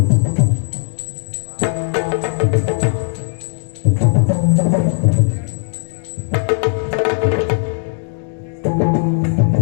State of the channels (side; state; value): right; silent; digital silence